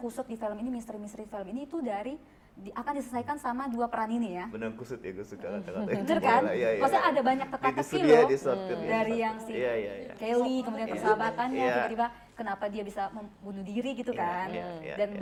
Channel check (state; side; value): identical; both; correlation 1.00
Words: kusut di film ini, misteri-misteri film ini itu akan diselesaikan sama dua peran ini ya? Benang kusut ya, gue suka kata-kata. Bener kan? Iya. Maksudnya ada banyak teka-teki loh. Dari yang si Kelly, kemudian persahabatannya, tiba-tiba kenapa dia bisa membunuh diri gitu kan. Dan